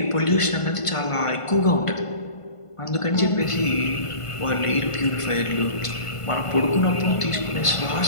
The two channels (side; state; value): right; late; 1.5 ms